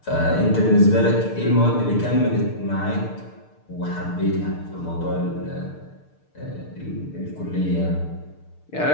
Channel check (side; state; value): right; late; 6.7 ms